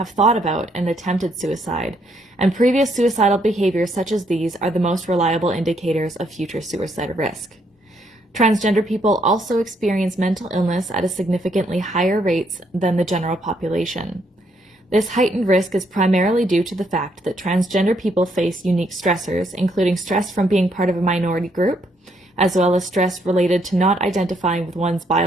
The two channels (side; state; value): both; normal; correlation 0.73